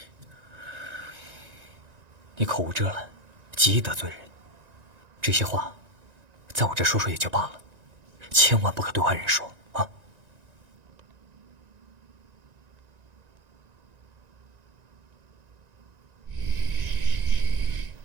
你口无遮拦，极易得罪人。这些话，在我这说说也就罢了，千万不可对外人说啊！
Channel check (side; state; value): left; late; 1.9 ms